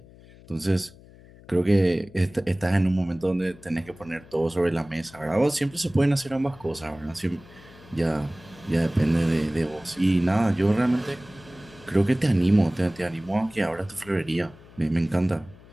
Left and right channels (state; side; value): noise; left; hum, 22 dB below the sound